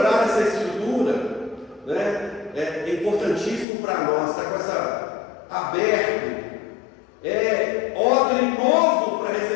essa estrutura, né, é importantíssimo para nós, estar com essa aberto. É odre novo para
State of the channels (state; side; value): drops out; right; at 3.7 s